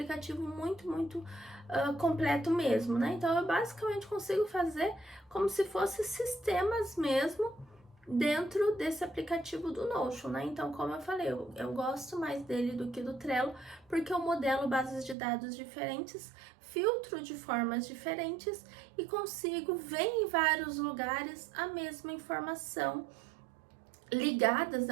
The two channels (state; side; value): drops out; left; at 15.2 s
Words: muito completo mesmo, né? Então eu basicamente consigo fazer como se fosse sistemas mesmo dentro desse aplicativo do Notion, né? Então, como eu falei, eu gosto mais dele do que do Trello, porque eu modelo bases de dados diferentes, filtro de formas diferentes e consigo ver em vários lugares a mesma informação ligadas,